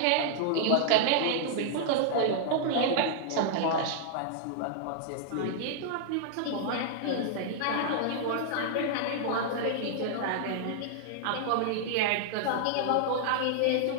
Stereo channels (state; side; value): different; both; correlation -0.01